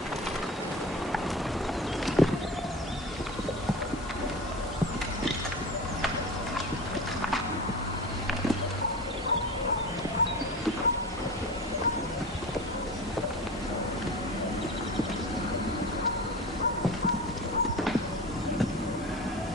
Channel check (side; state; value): both; normal; correlation 0.31